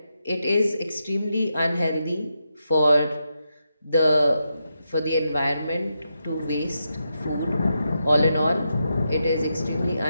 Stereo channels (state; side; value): inverted; both; correlation -0.86